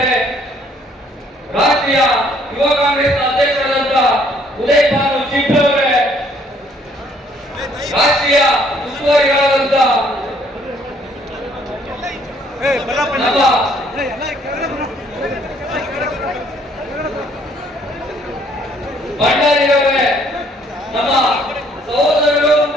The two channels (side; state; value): both; normal; correlation 0.63